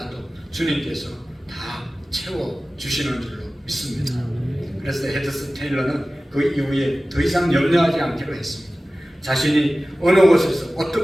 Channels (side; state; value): both; normal; correlation 0.96